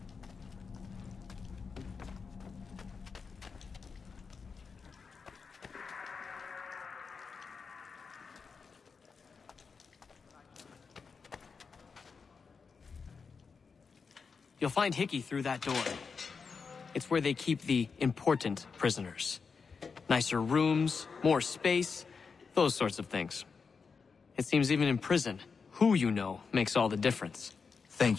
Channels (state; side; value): quieter; right; 5.3 dB